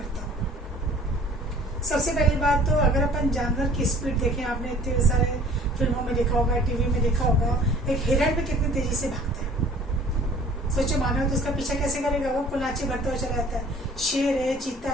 हो। सबसे पहली बात तो अगर अपन जानवर की स्पीड देखें, आपने इतने सारे फिल्मों में देखा होगा, टीवी में देखा होगा, एक हिरण भी कितनी तेजी से भागता है। सोचो मानव तो उसका पीछा कैसे करेगा? वो कुलाची भरता हुआ चला जाता है। शेर है, चीता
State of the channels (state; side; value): normal; both; correlation 0.50